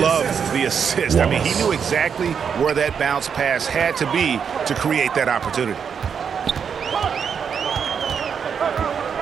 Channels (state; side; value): quieter; left; 7.0 dB